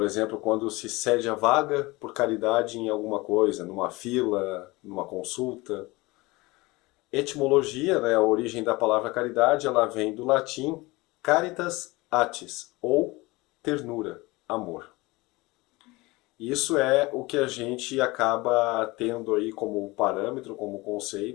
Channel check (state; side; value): quieter; right; 22.4 dB